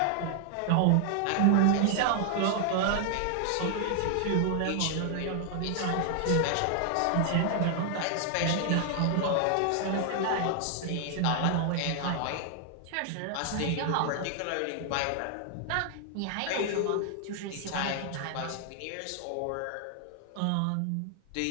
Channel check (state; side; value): different; both; correlation 0.00